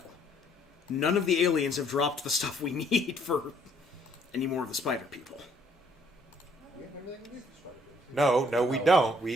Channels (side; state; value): both; normal; correlation 0.64